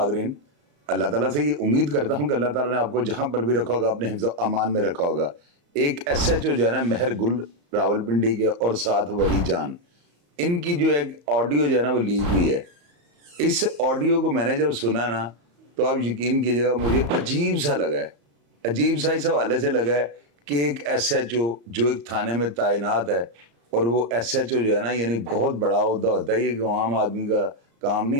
अल्लाह ताला से ये उम्मीद करता हूँ कि अल्लाह ताला ने आपको जहाँ पर भी रखा होगा अपने हिफ्ज़ अमान में रखा होगा। एक एसएचओ जो है ना मेहर गुल रावलपिंडी के और साथ वली जान, इनकी जो एक ऑडियो जो है ना वो लीक हुई है। इस ऑडियो को मैंने जब सुना ना तो आप यकीन कीजिएगा मुझे अजीब सा लगा है। अजीब सा इस हवाले से लगा है कि एक एसएचओ जो एक थाने में तैनात है और वो एसएचओ जो है ना यानी बहुत बड़ा ओहदा होता है, ये कि आम आदमी का काम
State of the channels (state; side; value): late; left; 35 ms